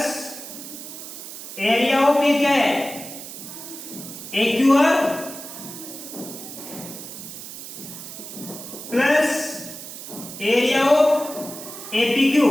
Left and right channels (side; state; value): right; noise; hiss, 11 dB below the sound